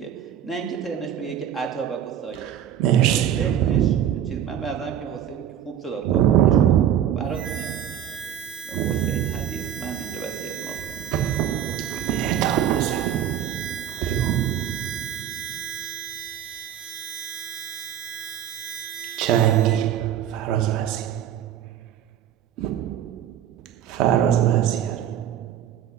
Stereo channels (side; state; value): left; quieter; 10.2 dB